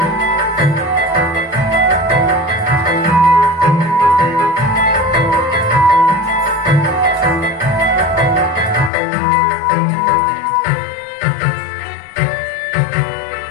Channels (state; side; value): drops out; right; at 8.9 s